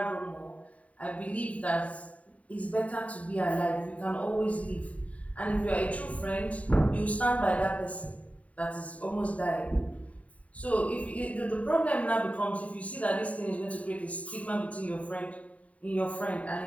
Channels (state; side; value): late; right; 0.067 ms